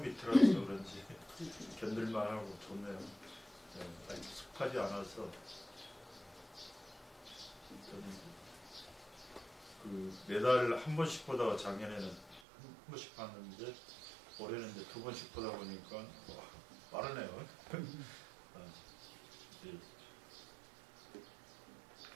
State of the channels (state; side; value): drops out; left; at 12.4 s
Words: 밑이라서 그런지 견딜만 하고 좋네요. 네, 아직 습하지 않아서 그 매달 한 번씩 보다가 작년에는 한 번씩 봤는데 올해는 이제 두 번씩 보다 보니까 빠르네요.